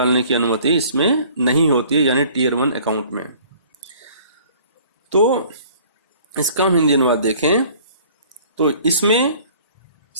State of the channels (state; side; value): inverted; both; correlation -0.52